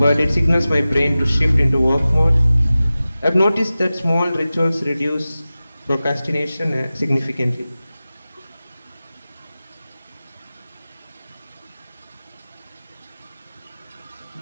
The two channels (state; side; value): inverted; both; correlation -0.96